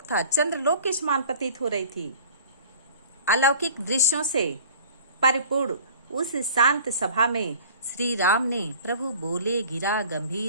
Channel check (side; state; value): both; inverted; correlation -0.45